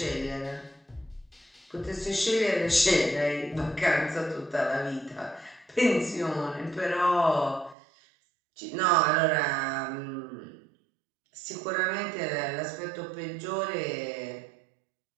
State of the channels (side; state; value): left; drops out; at 7.8 s